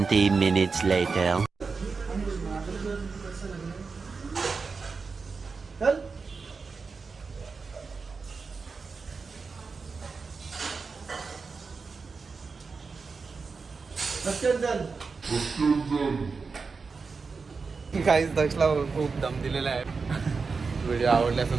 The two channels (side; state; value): left; quieter; 4.7 dB